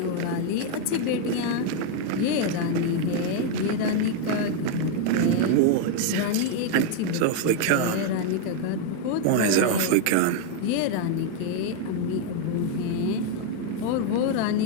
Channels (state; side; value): different; both; correlation 0.00